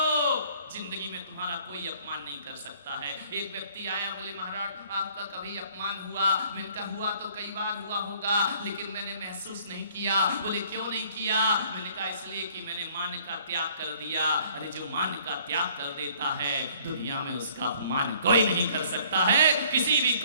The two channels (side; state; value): both; inverted; correlation -0.57